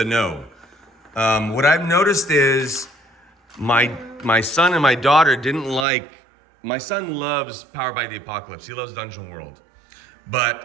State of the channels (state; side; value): drops out; left; at 5.9 s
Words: no. What I've noticed is my son and my daughter didn't like... My son loves Powered by the Apocalypse. He loves Dungeon World.